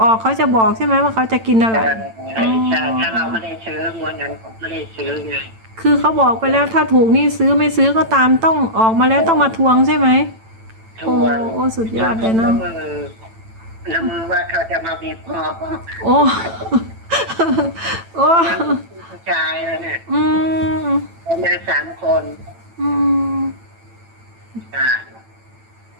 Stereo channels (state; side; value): late; left; 9.0 ms